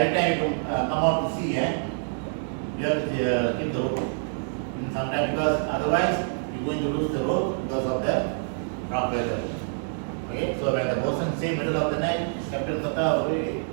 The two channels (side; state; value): left; silent; digital silence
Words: time you come out to sea, you have to keep the rope. Sometimes because otherwise you're going to lose the rope because of the rough weather. Okay, so when the bosun say middle of the night, captain kata,